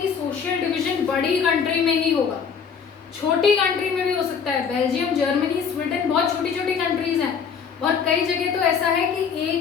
सोशल डिवीजन बड़ी कंट्री में ही होगा, छोटी कंट्री में भी हो सकता है। बेल्जियम, जर्मनी, स्वीडन बहुत छोटी छोटी कंट्रीज हैं, और कई जगह तो ऐसा है कि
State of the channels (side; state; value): right; quieter; 6.6 dB